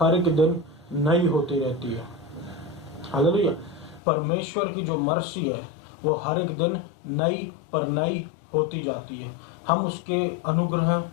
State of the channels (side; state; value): right; drops out; at 4.0 s